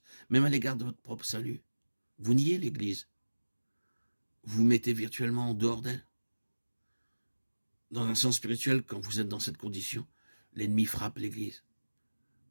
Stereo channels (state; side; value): inverted; both; correlation -1.00